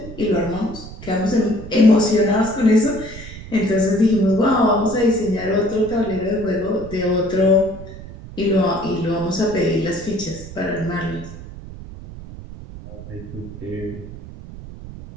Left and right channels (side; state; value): right; noise; rumble, 14 dB below the sound